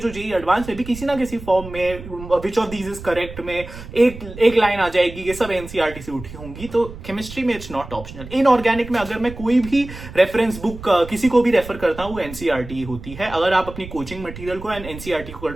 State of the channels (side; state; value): right; noise; rumble, 13 dB below the sound